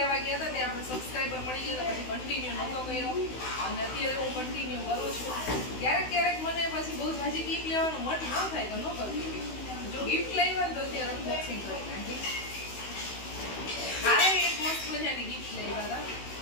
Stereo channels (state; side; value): late; right; 16 ms